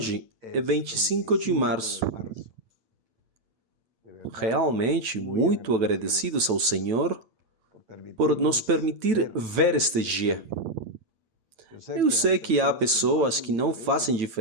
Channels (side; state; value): left; late; 9.1 ms